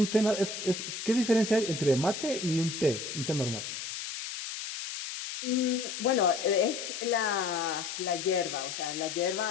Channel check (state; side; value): noise; left; hiss, 7 dB below the sound